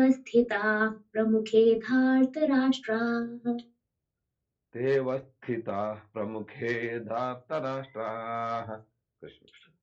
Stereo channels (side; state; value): both; identical; correlation 1.00